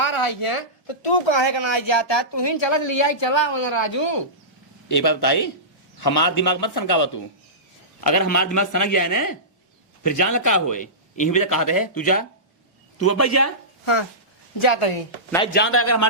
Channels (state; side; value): normal; both; correlation -0.19